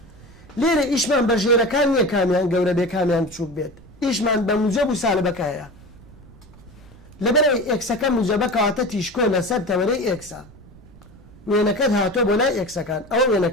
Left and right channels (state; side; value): noise; right; rumble, 22 dB below the sound